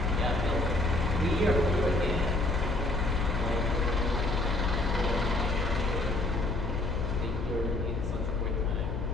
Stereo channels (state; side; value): noise; left; hum, 5 dB below the sound